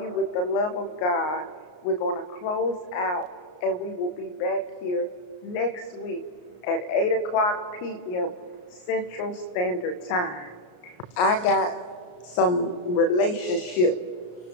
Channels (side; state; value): right; late; 33 ms